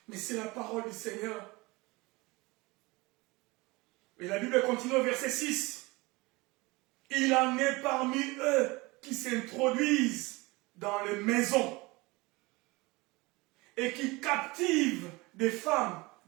Mais c'est la parole du Seigneur. Et la Bible continue au verset 6. Il en est parmi eux qui s'introduisent dans les maisons et qui captivent des femmes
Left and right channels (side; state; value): left; quieter; 23.5 dB